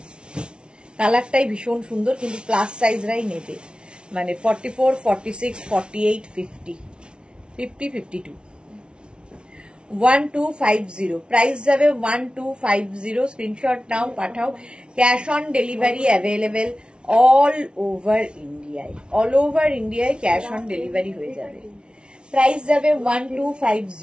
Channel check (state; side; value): late; left; 0.057 ms